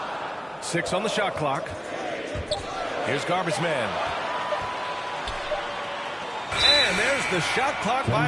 6 on the shot clock. Here's Garbage Man. And there's the shot clock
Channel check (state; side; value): identical; both; correlation 1.00